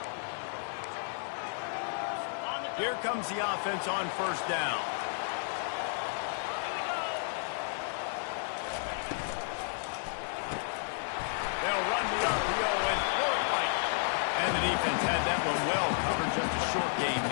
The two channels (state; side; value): silent; right; 56 dB below the other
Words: Here comes the offense on first down. They'll run the RPO and throw it right. And the defense had that one well covered, just a short game